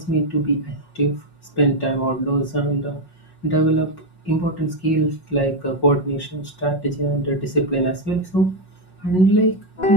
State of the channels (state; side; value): late; right; 5.5 ms